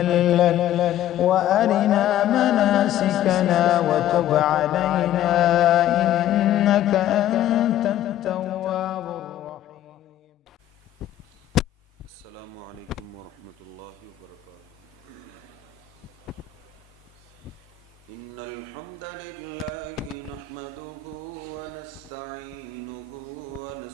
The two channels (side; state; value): right; quieter; 11.7 dB